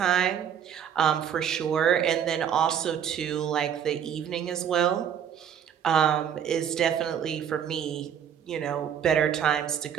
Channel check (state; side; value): quieter; left; 8.7 dB